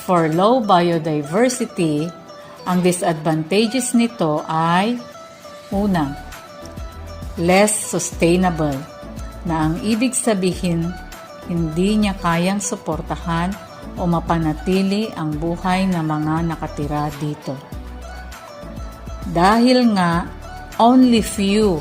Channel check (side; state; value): both; identical; correlation 1.00